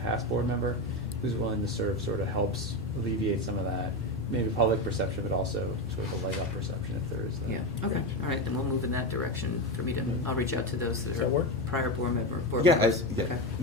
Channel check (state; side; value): normal; both; correlation 0.15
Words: board member who's willing to serve sort of helps alleviate some of that, maybe public perception, but also sort of a leg up perception if there is that. Yeah, okay, all right, then we'll move in that direction for me to, I'll reach out to those Does that that work? are prior board Yeah, members. yeah, Okay.